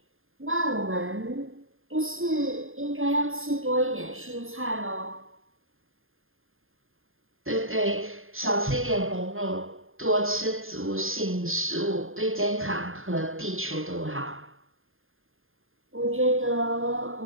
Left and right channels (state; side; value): late; left; 0.60 ms